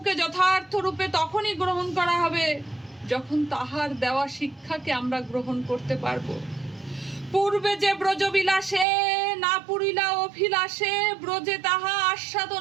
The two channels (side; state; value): left; drops out; at 8.8 s